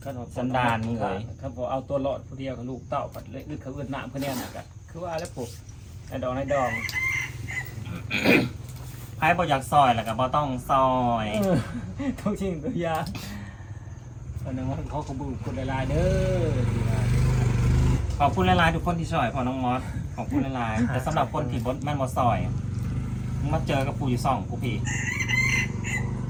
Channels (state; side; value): identical; both; correlation 1.00